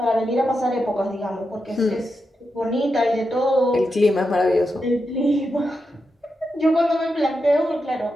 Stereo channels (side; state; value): both; normal; correlation 0.87